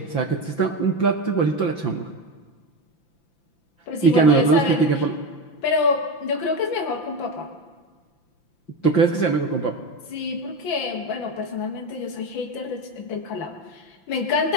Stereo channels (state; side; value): late; right; 5.9 ms